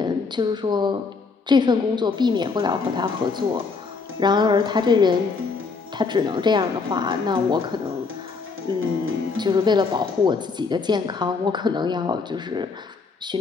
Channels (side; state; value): right; quieter; 4.6 dB